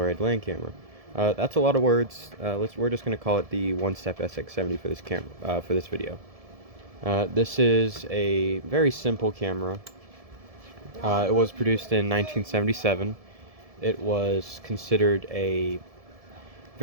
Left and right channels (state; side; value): late; left; 1.7 ms